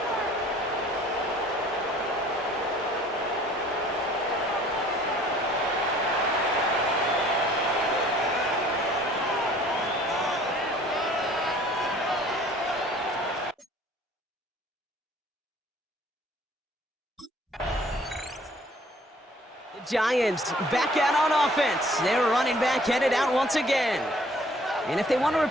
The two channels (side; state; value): both; normal; correlation 0.55